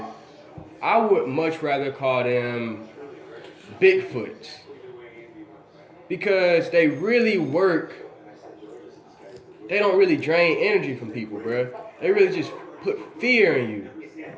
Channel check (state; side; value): identical; both; correlation 1.00